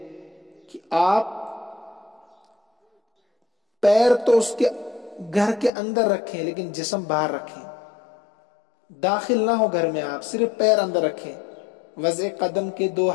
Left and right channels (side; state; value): right; drops out; at 5.7 s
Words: کہ آپ پیر تو اس کے گھر کے اندر رکھیں لیکن جسم باہر رکھیں، داخل نہ ہو گھر میں، آپ صرف پیر اندر رکھیں۔ وضع قدم کے دو